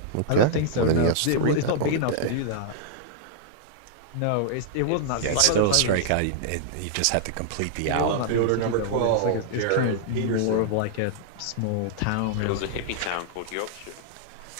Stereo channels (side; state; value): both; different; correlation -0.01